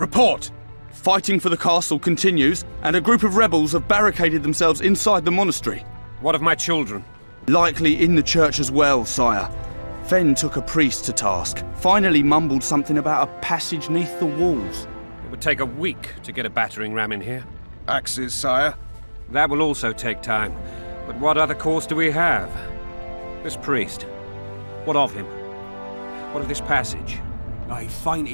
Fighting for the castle continues, and a group of rebels have barricaded themselves inside the monastery. What of my children? Likely in the church as well, sire. Fen took a priest to task, finally mumbled something about a passage neath the walls. It would take a week to get a battering ram in here. Axes, sire? That will also take time. But what other course do we have? This priest. What of him? What of this passage? I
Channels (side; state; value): both; inverted; correlation -1.00